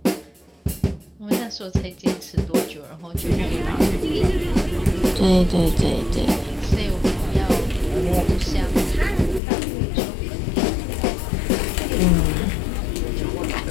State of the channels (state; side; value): drops out; right; at 9.4 s